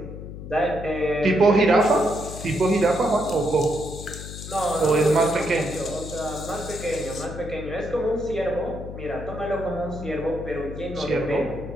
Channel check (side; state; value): left; noise; hum, 10 dB below the sound